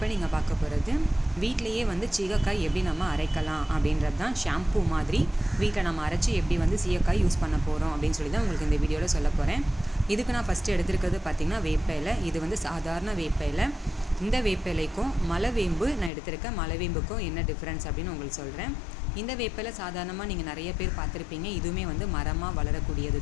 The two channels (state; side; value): drops out; right; at 16.1 s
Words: நீங்கள் பார்க்க போகிறது வீட்டிலையே வந்து சீகக்காய் எப்படி நம்ம அரைக்கலாம் அப்படின்றது தான். ஷாம்பூ மாதிரி வீட்டில் நம்ம அரைச்சி எப்படி வந்து சீகக்காய் யூஸ் பண்ண போகிறோம் அப்படின்னு சொல்லி தான் உங்களுக்கு இந்த வீடியோவில் சொல்ல போகிறேன். இதுக்கு நான் ஃபஸ்ட்டு எடுத்துருக்கிறது பார்த்திங்கன்னா வேப்ப இலை. இது வந்து சாதாரண வேப்ப இலை. இந்த வேப்ப இலைக்கும் மலைவேம்பு நான் எடுத்திருக்கேன். மலைவேம்புக்கும் என்ன டிஃப்ரென்ஸ் அப்படின்னு உங்களுக்கு சொல்கிறேன். இந்த வேப்ப இலை சாதாரணமாக நீங்கள் நிறைய பேர் பார்த்துருப்பீங்க. இதுவுமே வந்து மரமாக வளரக்கூடியது